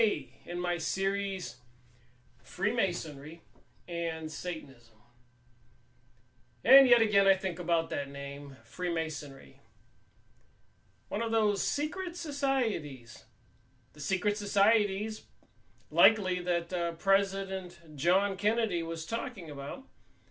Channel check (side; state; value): both; identical; correlation 1.00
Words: in my series Freemasonry and Satanism. And yet again I think about that name, Freemasonry. One of those secret societies. The secret societies likely that President John Kennedy was talking about,